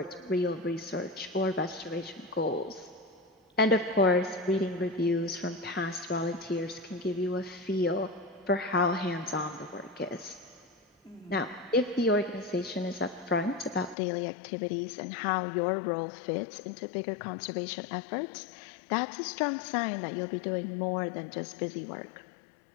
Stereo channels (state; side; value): drops out; right; at 14.0 s